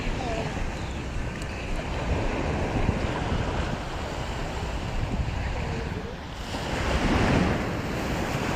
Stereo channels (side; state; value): both; identical; correlation 1.00